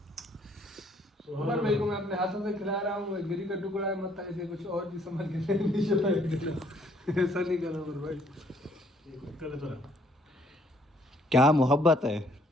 उमर भाई को मैं अपने हाथों से खिला रहा हूँ, गिरी का टुकड़ा है, मत ऐसे कुछ और भी समझ के नहीं चला। ऐसा नहीं करो उमर भाई। क्या मोहब्बत है।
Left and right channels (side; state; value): both; normal; correlation 0.64